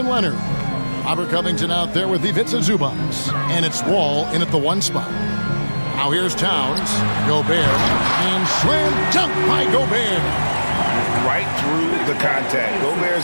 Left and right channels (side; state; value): both; inverted; correlation -1.00